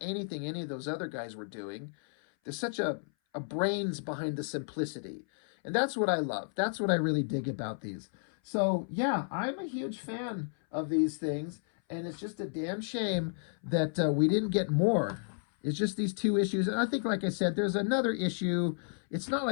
anything any of those other guys were doing. There's such a brains behind the simplicity. And that's what I love. That's what I really dig about these. So, yeah, I'm a huge fan of these things. And it's just a damn shame that we didn't get more. It's just these 2 issues. And I think, like I said, there's another issue. It's not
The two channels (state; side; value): silent; right; 56 dB below the other